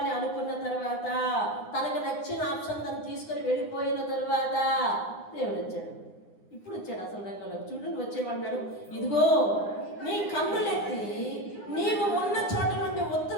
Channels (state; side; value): late; right; 9.7 ms